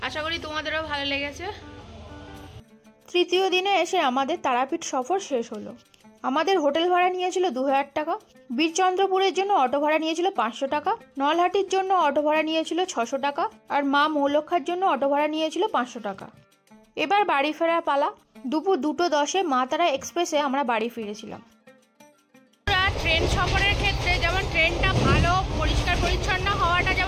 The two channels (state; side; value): identical; both; correlation 1.00